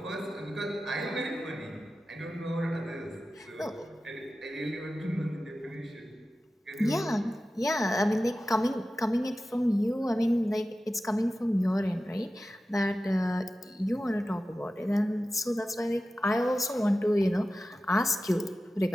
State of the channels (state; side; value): normal; both; correlation 0.94